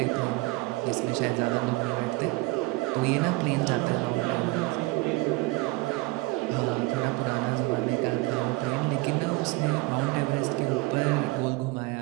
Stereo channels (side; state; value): left; quieter; 22.4 dB